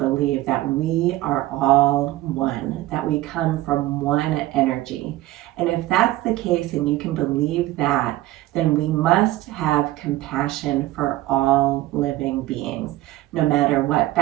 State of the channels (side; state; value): left; quieter; 16.5 dB